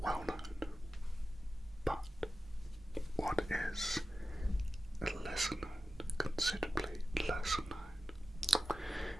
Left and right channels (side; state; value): both; normal; correlation 0.94